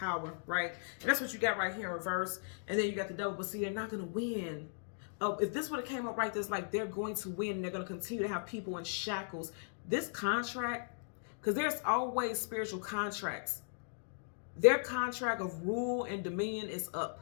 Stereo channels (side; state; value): right; silent; digital silence